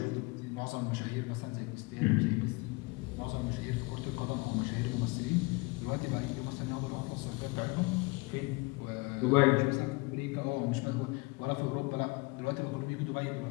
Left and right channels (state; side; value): quieter; right; 26.2 dB